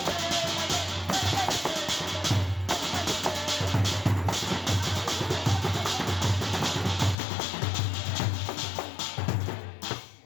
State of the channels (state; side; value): drops out; right; at 7.2 s